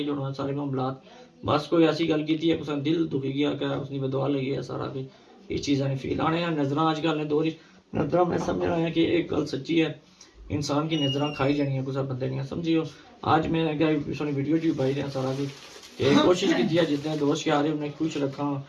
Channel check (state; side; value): identical; both; correlation 1.00